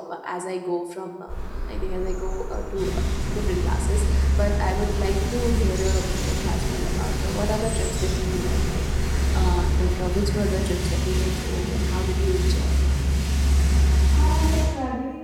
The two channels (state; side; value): identical; both; correlation 1.00